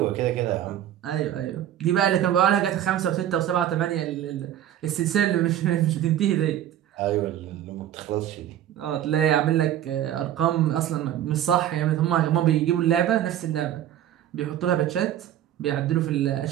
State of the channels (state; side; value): quieter; left; 11.5 dB